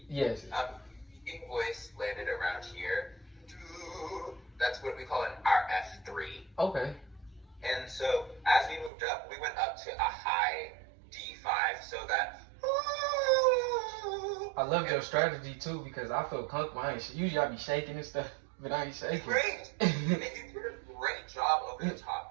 Yes. Speaking voice landed around here. That's what we call our F3. Okay. And so as we moved up, we went up to a high D5, so that. I love your strategy too because I feel comfortable. Usually I be shaking and stuff, but I ain't shaking. Great. And you did a great job over the top.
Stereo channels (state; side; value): drops out; left; at 8.9 s